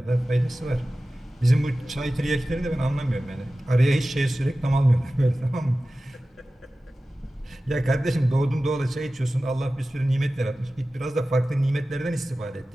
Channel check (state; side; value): normal; both; correlation 0.95